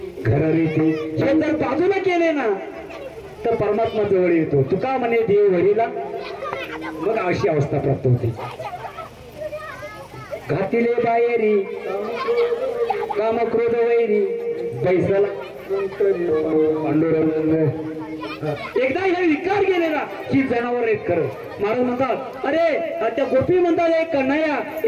घररीती, हे जर बाजूला केले ना तर परमात्मा जवळ येतो. तुका म्हणे देव हरीला, मग अशी अवस्था प्राप्त होते. घातिले बाहेरी काम क्रोध वैरी, बैसला पांडुरंग. एकदा हे विकार केले ना की जनावर आहेत खरं. महाराज म्हणतात अरे त्या गोपी म्हणतात एक कन्हैया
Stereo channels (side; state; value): both; identical; correlation 1.00